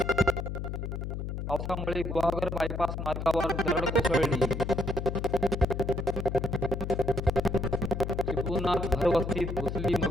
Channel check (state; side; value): noise; left; hum, 4 dB below the sound